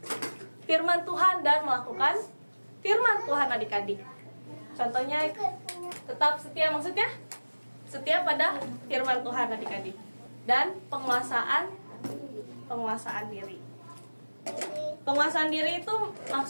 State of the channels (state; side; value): inverted; both; correlation -1.00